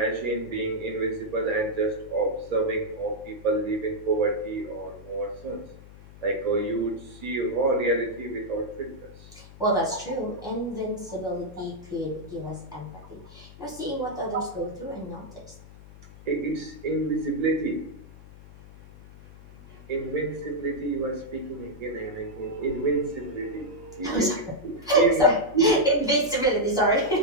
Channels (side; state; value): left; noise; hum, 19 dB below the sound